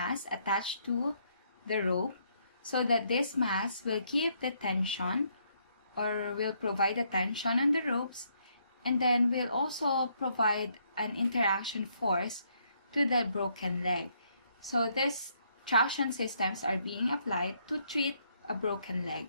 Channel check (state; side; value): inverted; both; correlation -0.72